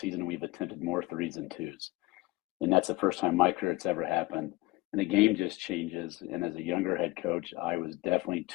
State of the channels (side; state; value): right; quieter; 19.7 dB